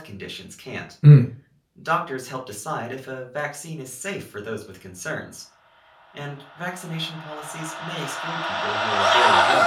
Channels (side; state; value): both; identical; correlation 1.00